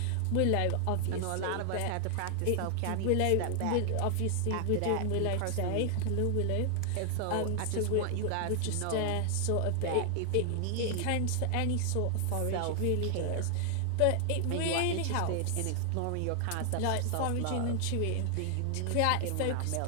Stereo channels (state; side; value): different; both; correlation 0.00